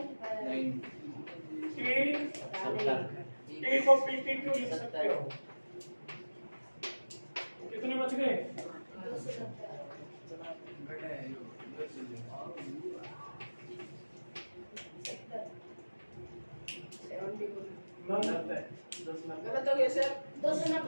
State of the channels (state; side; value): inverted; both; correlation -1.00